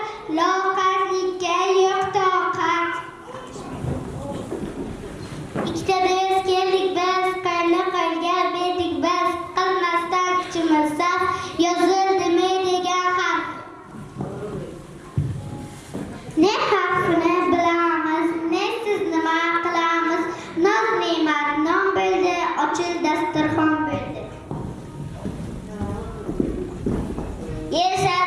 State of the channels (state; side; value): identical; both; correlation 1.00